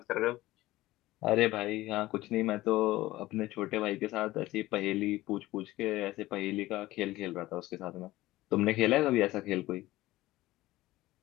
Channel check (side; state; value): right; quieter; 17.4 dB